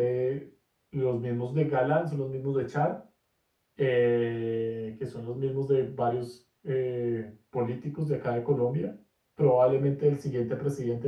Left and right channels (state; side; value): identical; both; correlation 1.00